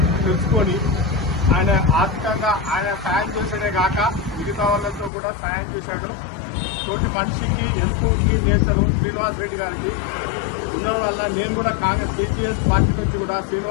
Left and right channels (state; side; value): drops out; right; at 5.1 s